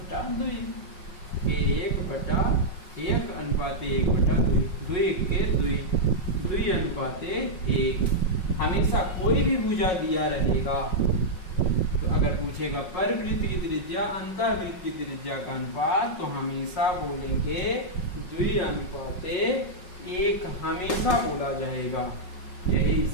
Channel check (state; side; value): late; right; 5.4 ms